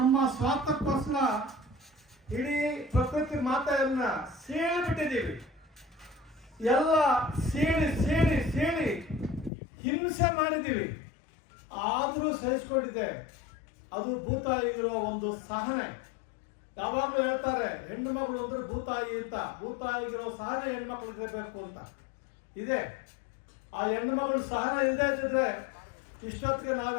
ಸ್ವಾರ್ಥಕ್ಕೋಸ್ಕರ ಇಡೀ ಪ್ರಕೃತಿ ಮಾತೆಯನ್ನ ಸೀಳಿಬಿಟ್ಟಿದ್ದೀವಿ. ಎಲ್ಲ ಸೀಳಿ ಸೀಳಿ ಸೀಳಿ ಹಿಂಸೆ ಮಾಡಿದ್ದೀವಿ. ಆದರೂ ಸಹಿಸ್ಕೊಂಡಿದೆ. ಅದು ಭೂತಾಯಿಗಿರೋ ಒಂದು ಸಹನೆ. ಯಾವಾಗಲೂ ಹೇಳ್ತಾರೆ ಹೆಣ್ಣು ಮಗಳು ಅಂದ್ರೆ ಭೂತಾಯಿ ಅಂತ. ಭೂತಾಯಿಗಿರೋ ಸಹನೆ ಹೆಣ್ಮಕ್ಳಿಗೆ ಇರಬೇಕು ಅಂತ ಇದೆ. ಆ ಹೆಣ್ಣು ಮಗಳು ಸಹನೆ ಇಲ್ಲದೆ ಇದ್ದಿದ್ರೆ ಇಷ್ಟೊತ್ತಿಗೆ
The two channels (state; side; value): drops out; right; at 9.5 s